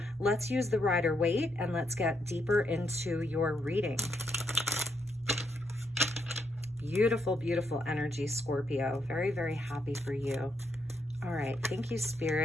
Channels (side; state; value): both; normal; correlation 0.77